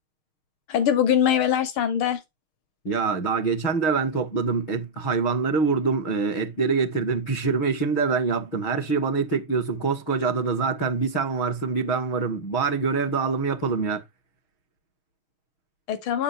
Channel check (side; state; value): right; late; 6.4 ms